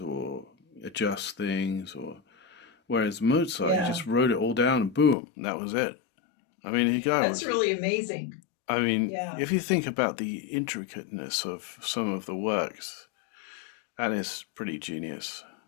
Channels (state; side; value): drops out; right; at 5.2 s